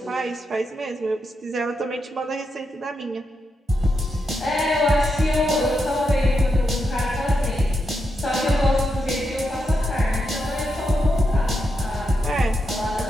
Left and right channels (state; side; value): normal; both; correlation 0.84